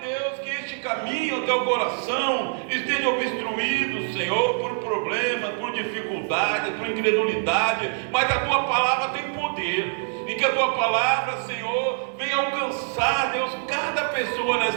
Deus, que este caminho até o coração esteja obstruído, Senhor, por problemas, por dificuldades, por incredulidade, mas a tua palavra tem poder. E que a tua palavra, Senhor, venha alcançar, Deus, cada pessoa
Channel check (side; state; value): left; silent; digital silence